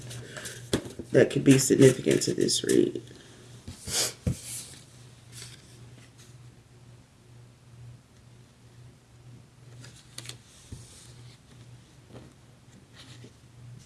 That could be significant to this read.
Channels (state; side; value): identical; both; correlation 1.00